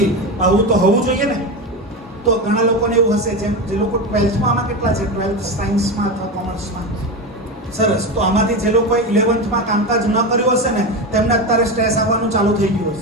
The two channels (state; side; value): normal; both; correlation 0.19